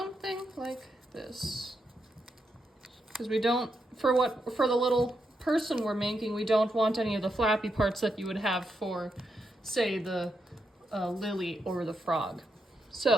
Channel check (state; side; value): normal; both; correlation 0.83